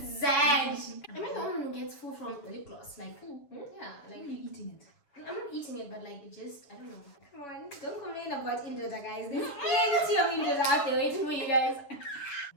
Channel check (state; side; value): late; right; 7.1 ms